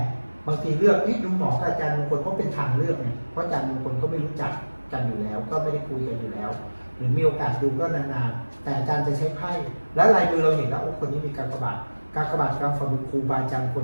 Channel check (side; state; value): both; inverted; correlation -1.00